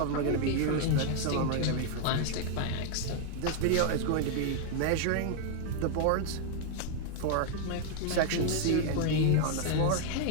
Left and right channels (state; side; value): different; both; correlation 0.00